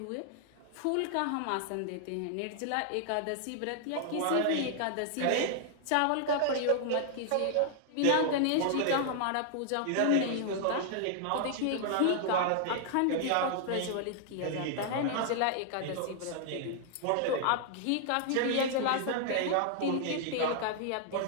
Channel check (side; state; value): both; different; correlation 0.00